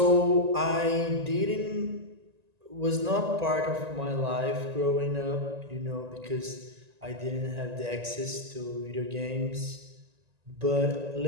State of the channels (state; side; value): late; left; 1.9 ms